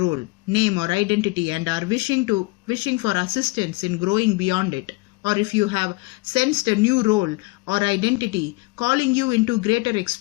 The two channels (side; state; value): right; quieter; 24.3 dB